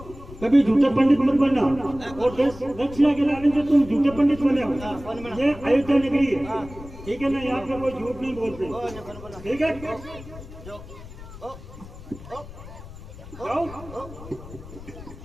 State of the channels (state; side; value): noise; left; rumble, 15 dB below the sound